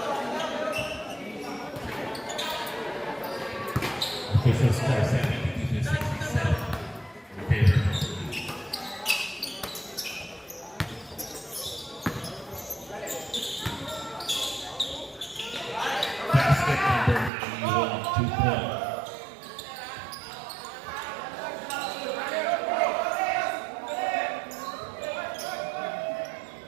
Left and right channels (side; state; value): left; drops out; at 17.3 s